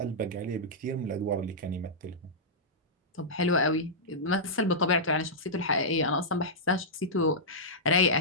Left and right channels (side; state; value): both; normal; correlation -0.12